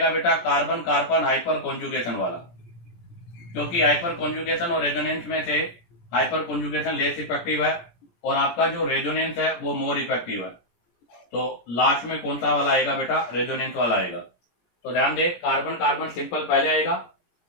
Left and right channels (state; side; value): late; right; 17 ms